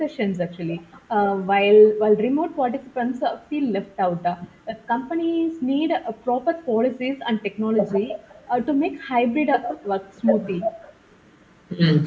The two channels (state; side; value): identical; both; correlation 1.00